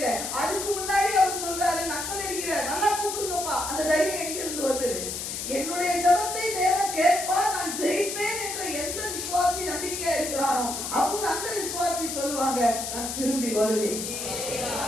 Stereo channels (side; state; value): left; noise; hiss, 5 dB below the sound